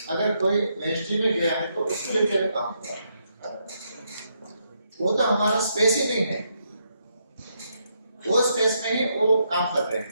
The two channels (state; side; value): inverted; both; correlation -0.78